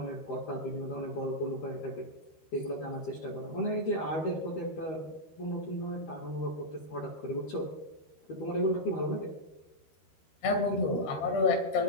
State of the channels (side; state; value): right; late; 13 ms